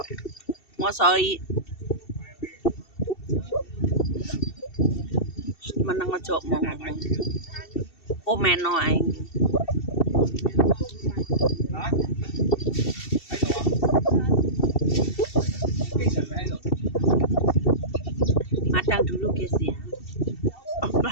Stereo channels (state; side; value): late; right; 2.7 ms